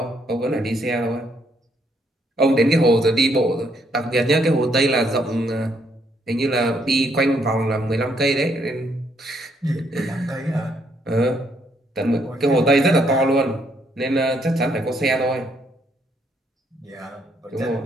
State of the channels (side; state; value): both; normal; correlation 0.71